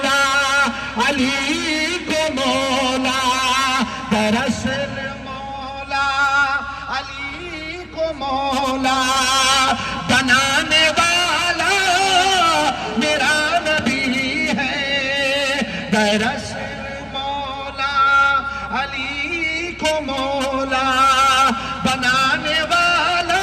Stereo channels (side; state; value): both; identical; correlation 1.00